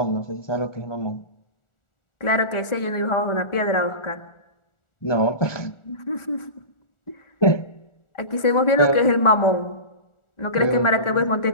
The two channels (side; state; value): right; late; 1.4 ms